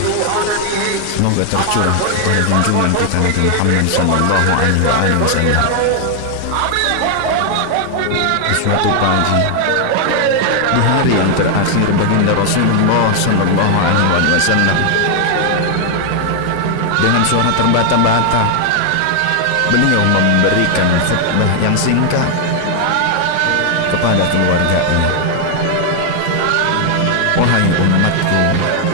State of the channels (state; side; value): different; both; correlation 0.00